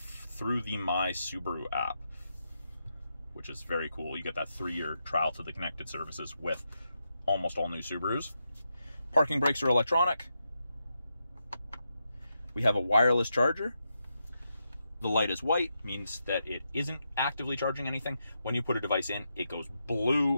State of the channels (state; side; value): inverted; both; correlation -0.85